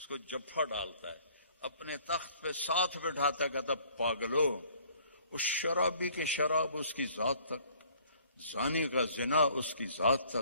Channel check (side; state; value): both; inverted; correlation -0.57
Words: کو جفا ڈالتا ہے، اپنے تخت پہ ساتھ بٹھاتا ہے، کہتا پاگلو، اس شرابی کی شراب اس کی ذات تک، زانی کا زنا اس کی ذات